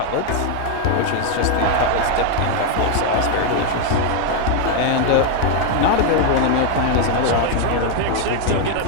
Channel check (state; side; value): different; both; correlation 0.01